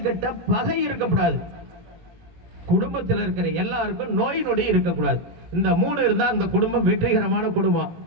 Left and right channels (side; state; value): left; late; 18 ms